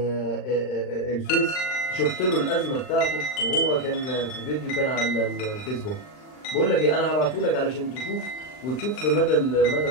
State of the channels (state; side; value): late; right; 39 ms